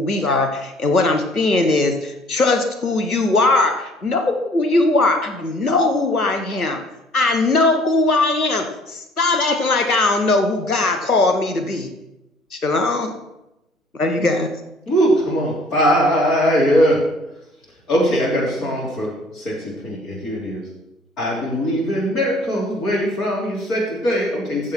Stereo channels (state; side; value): normal; both; correlation 0.56